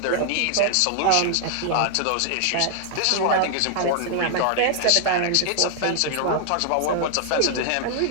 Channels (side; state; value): both; different; correlation 0.00